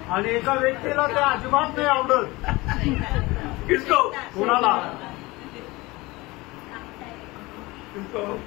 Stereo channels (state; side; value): quieter; right; 21.9 dB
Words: आणि एका व्यक्तीला ते अजिबात नाही आवडत. किसको? कोणाला?